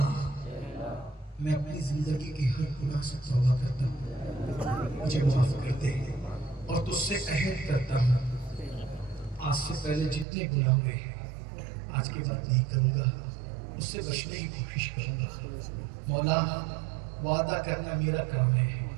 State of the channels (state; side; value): drops out; left; at 10.2 s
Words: میں اپنی زندگی کے ہر گناہ سے توبہ کرتا ہوں, مجھے معاف کر دے. اور تجھ سے عہد کرتا ہوں آج سے پہلے جتنے گناہ ہوئے آج کے بعد نہیں کروں گا, اس سے بچنے کی کوشش کروں گا. مولا وعدہ کرنا میرا کام ہے,